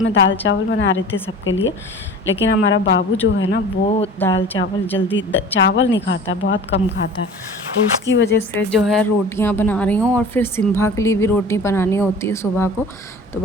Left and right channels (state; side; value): normal; both; correlation 0.40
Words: दाल चावल बना रही थी सबके लिए, लेकिन हमारा बाबू जो है ना, वो दाल चावल जल्दी चावल नहीं खाता, बहुत कम खाता है। तो उसकी वजह से जो है रोटियाँ बना रही हूँ, और फिर सिम्भा के लिए भी रोटी बनानी होती है सुबह को, तो